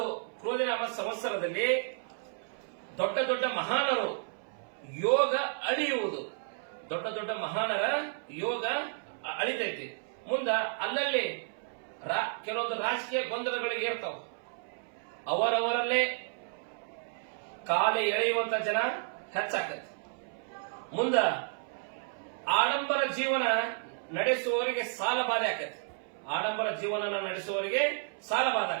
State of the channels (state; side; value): silent; left; 56 dB below the other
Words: ಕ್ರೋಧಿನಾಮ ಸಂವತ್ಸರದಲ್ಲಿ ದೊಡ್ಡ ದೊಡ್ಡ ಮಹಾನರು ಯೋಗ ಅಳಿಯುವುದು, ದೊಡ್ಡ ದೊಡ್ಡ ಮಹಾನರ ಯೋಗ ಅಳಿತೈತಿ. ಮುಂದ ಅಲ್ಲಲ್ಲಿ ಕೆಲವೊಂದು ರಾಜಕೀಯ ಗೊಂದಲಗಳಿಗೆ ಇರ್ತಾವ, ಅವರವರಲ್ಲೇ ಕಾಲೆ ಎಳೆಯುವಂತ ಜನ ಹೆಚ್ಚಾಕತಿ. ಮುಂದ ಆಡಂಬರ ಜೀವನ ನಡೆಸುವವರಿಗೆ ಸಾಲ ಬಾಧೆ ಆಕತಿ, ಆಡಂಬರ ಜೀವನ ನಡೆಸುವವರಿಗೆ ಸಾಲ ಬಾಧೆ